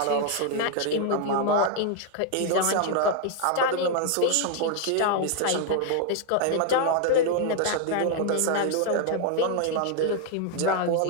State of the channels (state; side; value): different; both; correlation 0.00